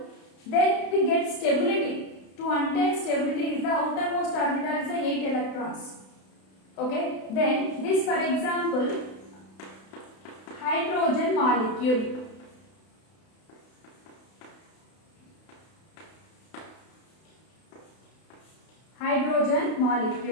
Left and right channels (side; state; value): right; late; 32 ms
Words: then we get stability. To attain stability is the outermost orbital is the 8 electrons. Okay, then this, for example, hydrogen molecule.